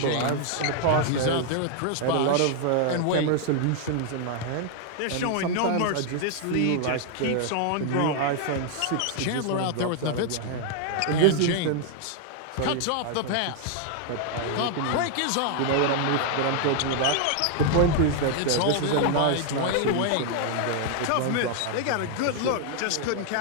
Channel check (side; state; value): both; different; correlation 0.00